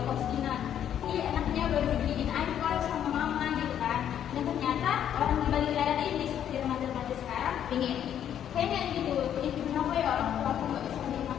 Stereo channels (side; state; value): right; quieter; 9.9 dB